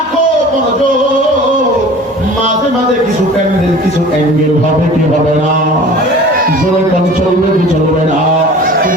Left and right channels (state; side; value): normal; both; correlation 0.43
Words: কিছু প্যান্ডেল কিছু অ্যাঙ্গেল হবে কি হবে না, জোরে কান চলবে কি চলবে না,